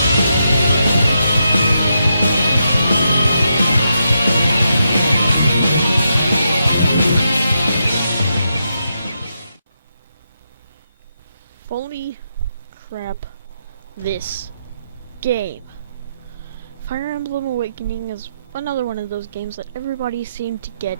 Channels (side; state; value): both; inverted; correlation -0.83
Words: Holy crap, this game. Fire Emblem Awakening is another one of those games that everybody seemed to get